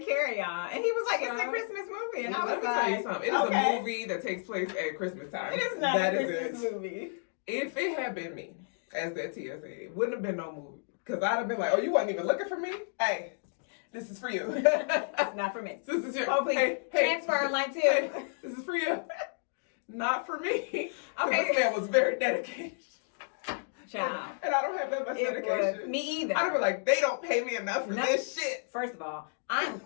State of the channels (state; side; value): silent; right; digital silence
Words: Carry On. And he was like, it's a Christmas movie. And I was let me tell you something. It is a movie that takes place at Christmas time. It is not a Christmas movie. If it had been me as that TSA, it wouldn't have been no movie. Because I'd have been like, oh, you wasn't even looking for me? Hey, this is for you. It's not for me. This is your... Oh, please. Hey, transfer line 2. Hey, this is for you. Not for me. Okay. This man was very dedicated. Child. And I don't have that much dedication. Me either. I'd be like, they don't pay me enough for this shit. First of all, I'm